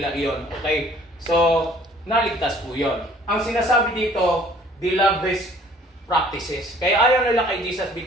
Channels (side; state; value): both; normal; correlation 0.55